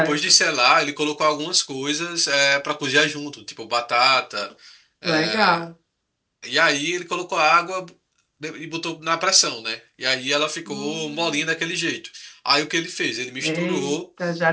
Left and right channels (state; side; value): identical; both; correlation 1.00